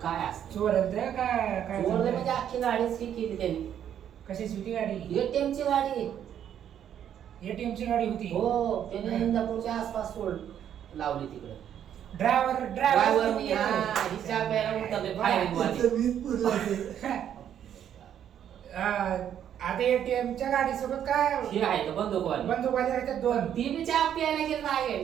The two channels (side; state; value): left; quieter; 9.7 dB